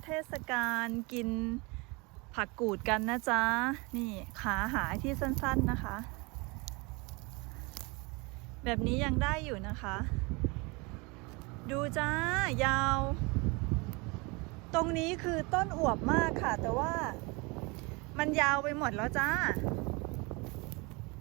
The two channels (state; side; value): quieter; left; 27.4 dB